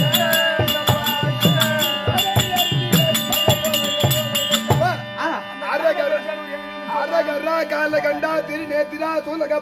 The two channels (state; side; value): identical; both; correlation 1.00